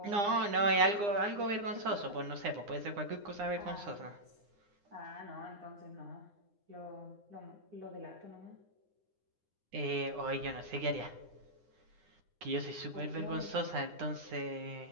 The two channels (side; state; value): left; late; 9.8 ms